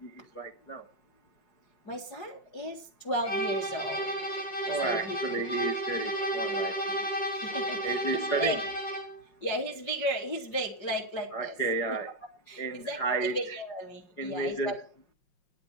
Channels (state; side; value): late; right; 5.5 ms